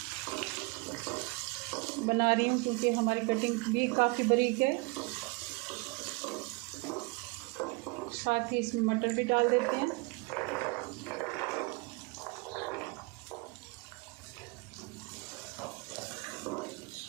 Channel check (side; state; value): left; quieter; 27.5 dB